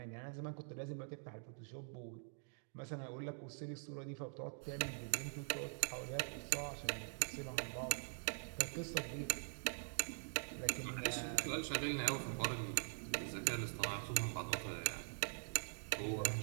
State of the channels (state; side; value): silent; left; digital silence